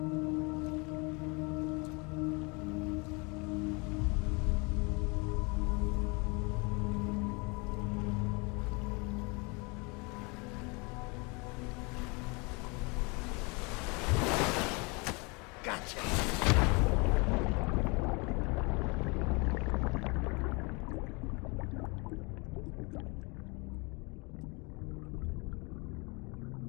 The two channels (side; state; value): right; quieter; 29.6 dB